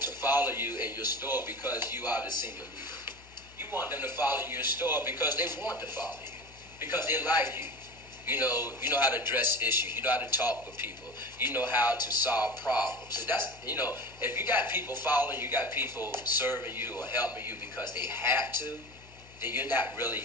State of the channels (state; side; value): noise; left; hum, 22 dB below the sound